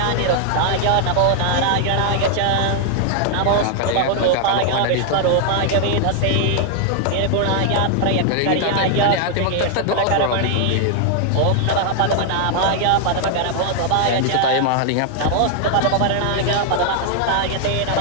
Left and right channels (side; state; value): both; different; correlation 0.00